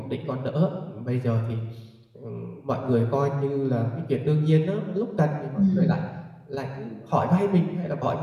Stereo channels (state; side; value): identical; both; correlation 1.00